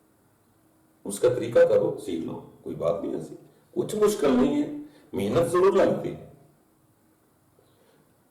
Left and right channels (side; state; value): both; identical; correlation 1.00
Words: اس کا طریقہ کرو، سیکھ لو. کوئی بات نہیں ایسی، کچھ مشکل نہیں ہے، محنت ضرور لگتی ہے.